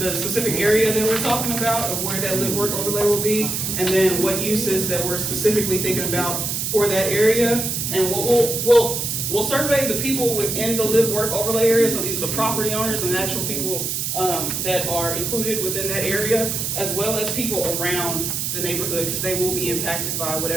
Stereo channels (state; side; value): noise; right; hiss, 1 dB below the sound